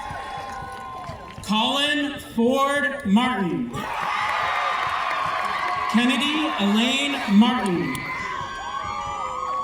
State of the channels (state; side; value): identical; both; correlation 1.00